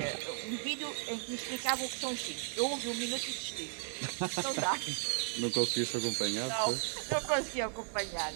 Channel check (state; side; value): silent; left; 54 dB below the other